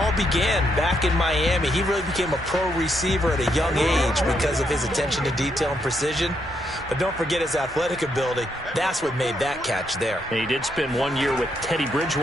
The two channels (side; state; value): both; normal; correlation 0.77